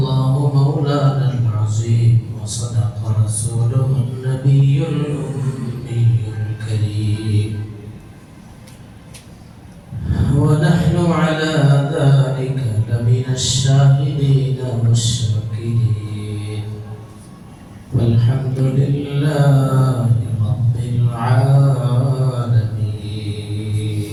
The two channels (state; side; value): identical; both; correlation 1.00